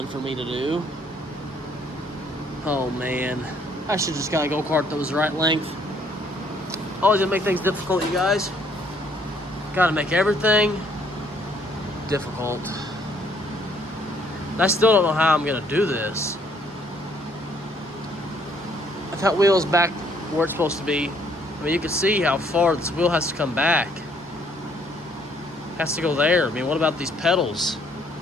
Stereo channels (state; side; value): normal; both; correlation 0.65